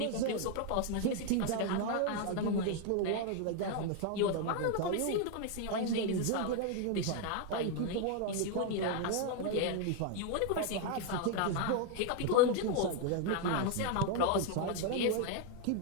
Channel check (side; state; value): both; different; correlation 0.01